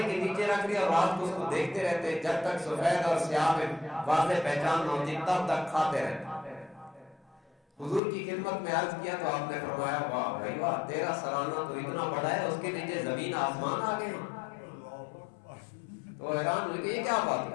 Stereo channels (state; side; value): drops out; right; at 8.0 s